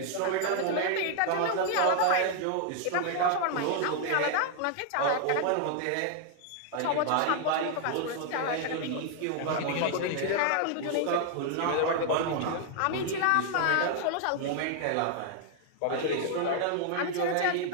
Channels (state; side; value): different; both; correlation 0.00